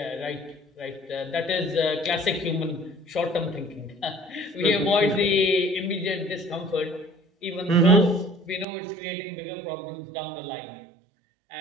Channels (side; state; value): left; drops out; at 8.7 s